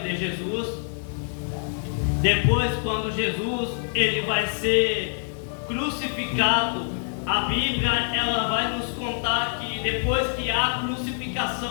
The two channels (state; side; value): silent; right; 61 dB below the other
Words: de Jesus, depois quando Jesus ele vai ser crucificado, a Bíblia ela vai nos contar que depois que a